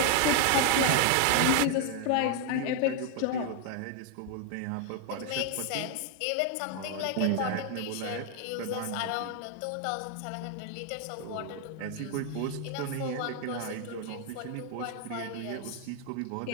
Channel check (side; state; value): both; different; correlation 0.01